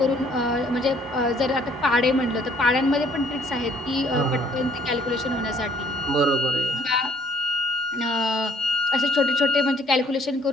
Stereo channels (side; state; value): both; normal; correlation 0.62